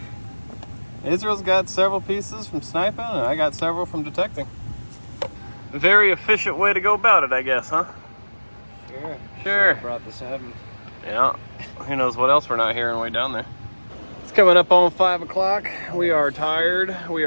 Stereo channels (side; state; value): both; inverted; correlation -1.00